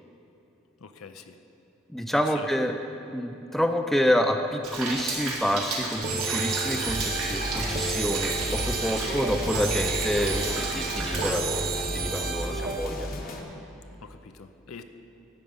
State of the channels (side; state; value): both; normal; correlation 0.70